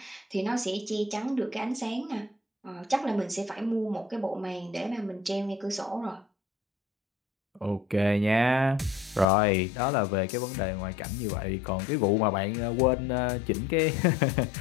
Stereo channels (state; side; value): drops out; right; at 9.2 s